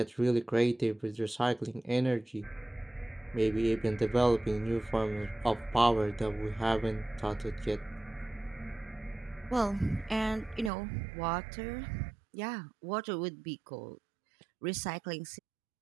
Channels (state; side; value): drops out; left; at 10.7 s